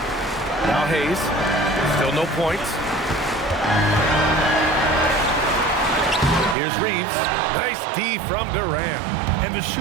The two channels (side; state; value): left; drops out; at 6.6 s